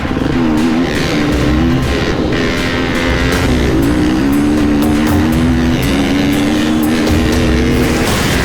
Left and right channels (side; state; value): both; identical; correlation 1.00